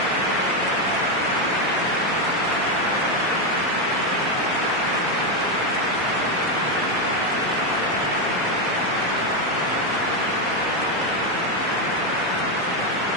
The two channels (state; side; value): normal; both; correlation 0.07